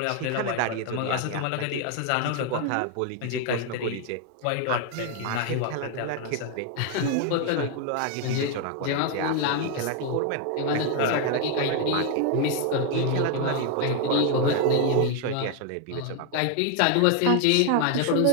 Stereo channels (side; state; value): both; different; correlation 0.01